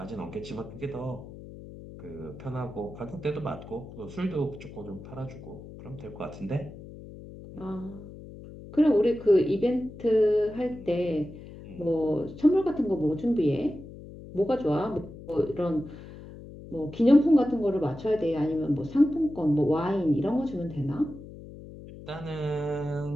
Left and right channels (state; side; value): noise; left; hum, 15 dB below the sound